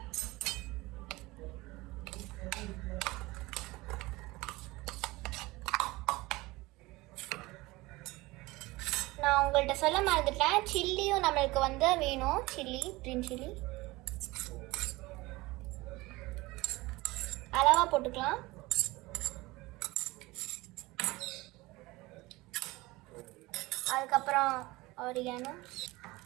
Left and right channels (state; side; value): quieter; left; 21.0 dB